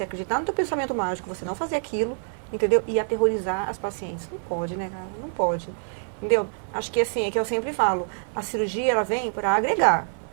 acreditar no teu pensamento mágico, você não fazer aquilo, entendeu? E aterrorizar as pacientes. Não pode, né, cara? Não pode. Entendeu? Acho que assim, é que eu sempre falo, a cirurgia, ela vem para agregar,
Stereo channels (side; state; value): left; silent; digital silence